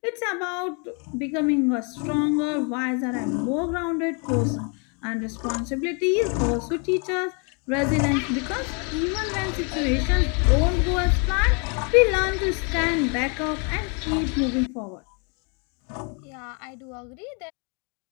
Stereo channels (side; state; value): right; quieter; 35.8 dB